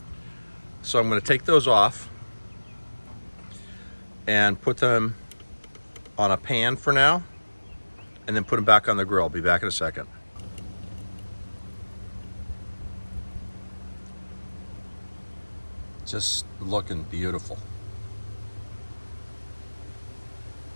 So I'm going to take those off and put them on a pan for now, and then put them back on the grill. I'll be back in a second. Just looking beautiful.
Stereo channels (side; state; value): both; inverted; correlation -1.00